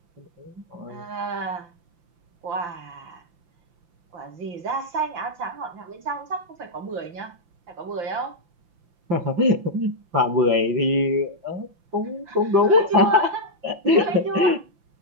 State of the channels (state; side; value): late; left; 5.8 ms